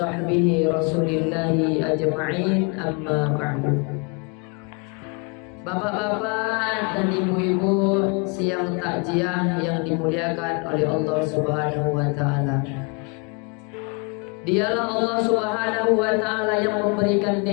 rasulillahi ajma'in, amma ba'du. Bapak-bapak dan ibu-ibu siang takziah yang dimuliakan oleh Allah Subhanahu wa taala. Dialah Allah Subhanahu wa taala yang memberikan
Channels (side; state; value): right; quieter; 33.0 dB